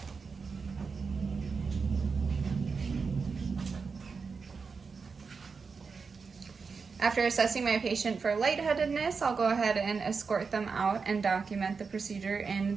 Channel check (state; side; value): quieter; left; 5.1 dB